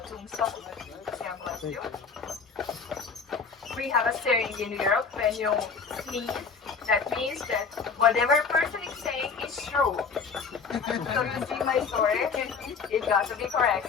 tombstones. Yeah, bless you. We have a saying in Europe when you sneeze. That means that whatever person is saying is true. So you see my story, it got to be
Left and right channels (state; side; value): quieter; right; 5.5 dB